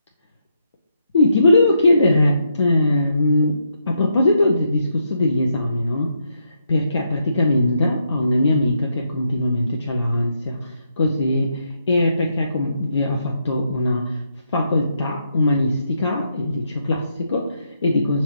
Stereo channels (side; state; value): both; inverted; correlation -0.79